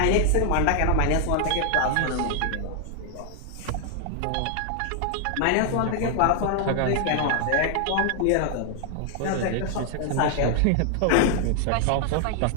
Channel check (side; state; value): both; different; correlation 0.00